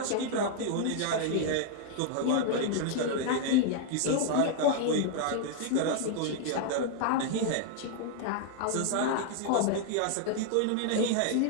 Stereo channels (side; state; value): both; different; correlation 0.00